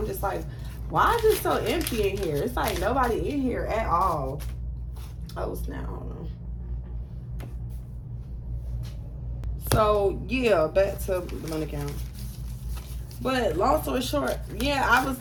just like, Why is it so empty in here? It's like nobody in here at all. Oh, snap. Hold on. So, yeah, back to Dominican. But long story short, yeah, I was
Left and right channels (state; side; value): identical; both; correlation 1.00